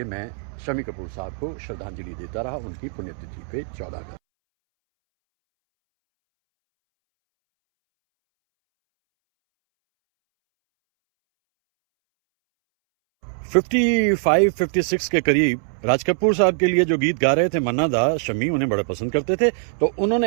मैं शम्मी कपूर साहब को श्रद्धांजलि देता रहा उनकी पुण्यतिथि पे 14 अगस्त। 55-56 के करीब राज कपूर साहब के लिए जो गीत गा रहे थे मन्ना दा, शम्मी उन्हें बड़ा पसंद करते थे। तो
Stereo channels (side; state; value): left; silent; 64 dB below the other